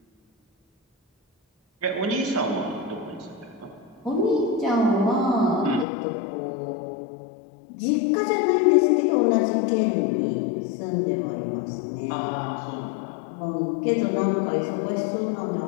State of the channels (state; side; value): drops out; right; at 5.9 s